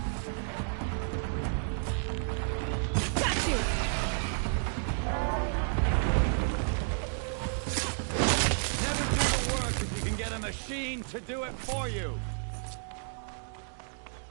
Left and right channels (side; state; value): left; silent; digital silence